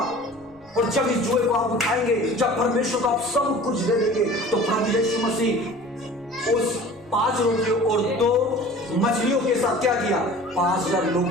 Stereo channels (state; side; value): noise; right; rumble, 28 dB below the sound